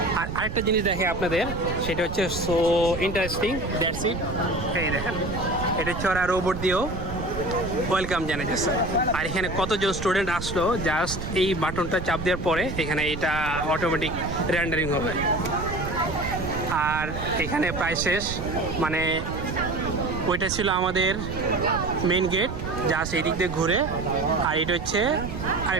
আর আরেকটা জিনিস দেখে আপনাদের, সেটা হচ্ছে সো ইন্টারেস্টিং, দ্যাটস ইট। এই দেখেন, এটা হচ্ছে ওরা রোবট দিয়েও ওয়েলকাম জানাইতেছে। আর এখানে কতজন স্টুডেন্ট আসলো, জাস্ট এই বাটনটা চাপ দেওয়ার পরে এখানে এটা অটোমেটিক রেন্ডারিং হবে। আর এখানে প্রায় শেষ, মানে ওইটা ছিল আমাদের মেইন গেট, জাস্ট এই দিক দিয়ে ঘুরে। আর এটা হচ্ছে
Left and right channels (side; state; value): right; noise; rumble, 7 dB below the sound